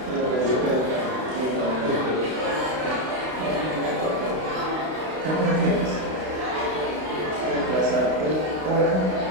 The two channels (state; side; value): late; left; 32 ms